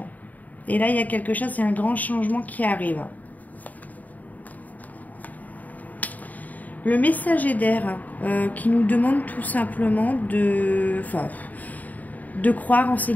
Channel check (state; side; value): late; right; 0.077 ms